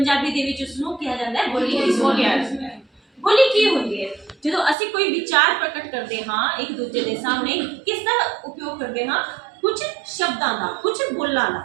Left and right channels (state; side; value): drops out; left; at 4.8 s